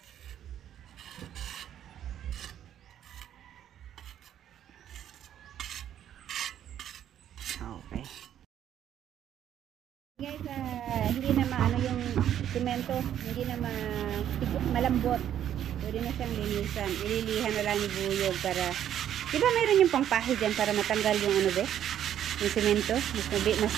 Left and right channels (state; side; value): quieter; left; 10.5 dB